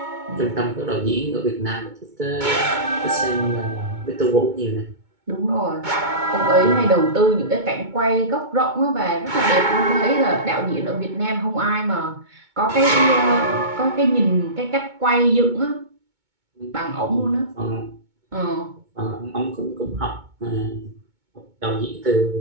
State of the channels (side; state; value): left; late; 2.2 ms